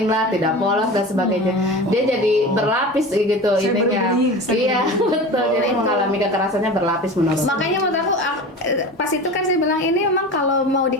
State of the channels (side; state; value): both; normal; correlation 0.32